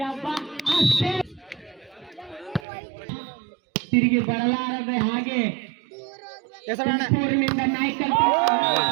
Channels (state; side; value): drops out; left; at 2.7 s